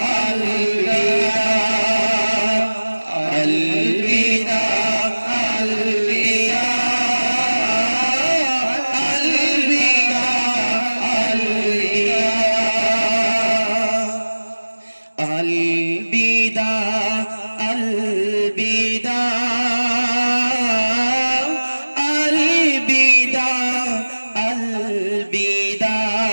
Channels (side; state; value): both; inverted; correlation -1.00